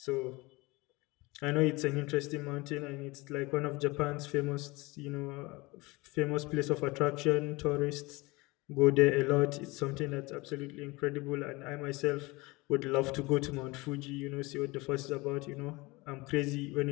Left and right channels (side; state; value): right; quieter; 23.3 dB